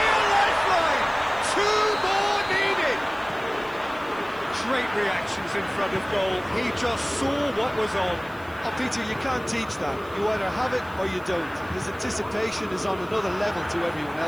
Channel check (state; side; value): noise; right; hiss, 25 dB below the sound